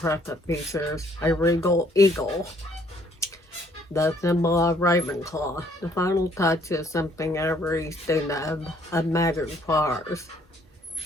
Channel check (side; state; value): both; normal; correlation 0.63